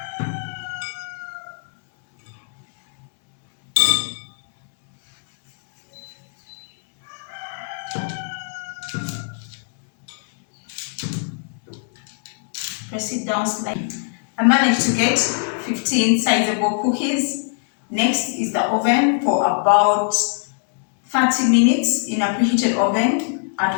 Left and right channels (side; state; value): right; silent; 64 dB below the other